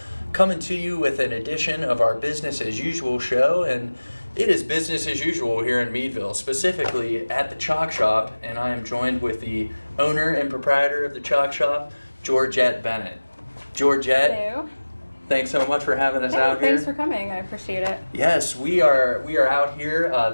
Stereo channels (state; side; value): inverted; both; correlation -1.00